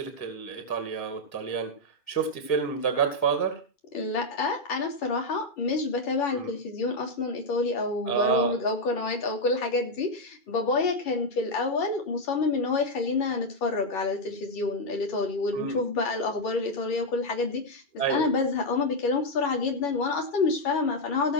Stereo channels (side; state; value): right; late; 1.9 ms